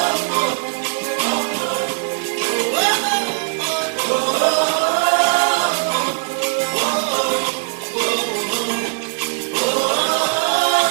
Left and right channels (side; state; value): left; silent; 66 dB below the other